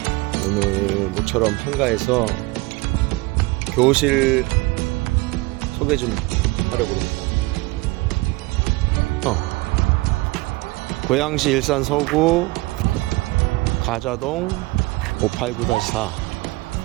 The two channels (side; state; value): left; quieter; 22.6 dB